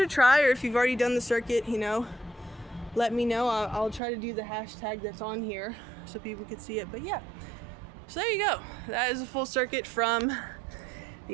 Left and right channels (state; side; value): drops out; left; at 4.0 s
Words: a try, or if you've already done the circuit, you know, let me know. I'll try to do the hashtag that's on here so people could see it. But yeah, so there you go. That is a full circuit from